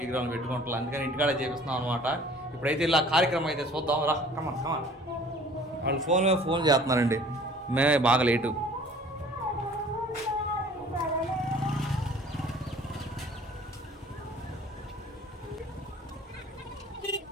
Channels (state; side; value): normal; both; correlation 0.50